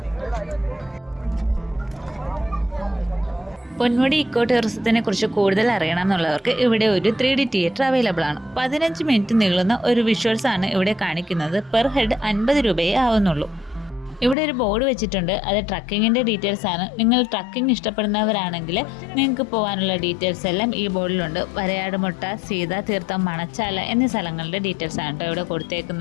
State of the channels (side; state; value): right; drops out; at 14.4 s